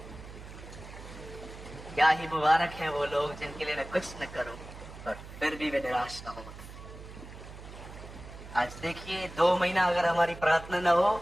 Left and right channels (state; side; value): noise; right; hum, 14 dB below the sound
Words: क्या ही मुबारक है वो लोग जिनके लिए मैं कुछ न करूं और फिर भी वे निराश न हो। आज देखिए 2 महीना अगर हमारी प्रार्थना न हो,